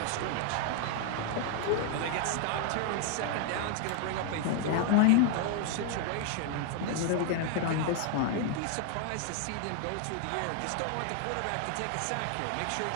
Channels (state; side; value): different; both; correlation 0.00